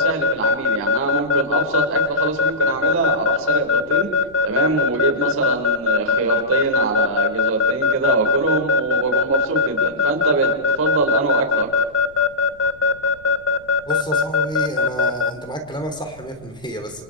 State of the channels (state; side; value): noise; left; rumble, 26 dB below the sound